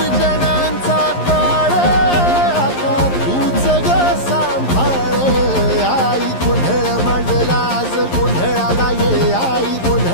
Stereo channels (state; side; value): late; right; 11 ms